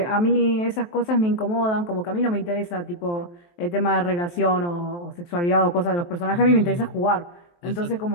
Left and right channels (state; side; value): late; right; 23 ms